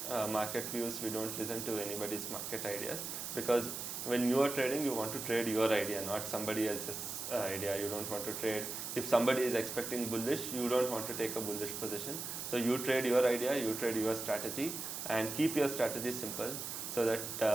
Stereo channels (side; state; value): right; noise; hiss, 5 dB below the sound